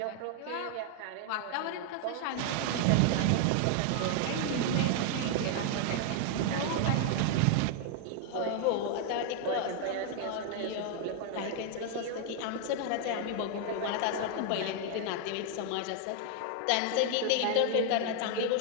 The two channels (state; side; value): different; both; correlation 0.00